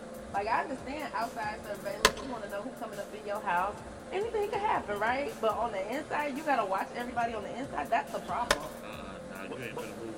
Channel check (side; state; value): both; identical; correlation 1.00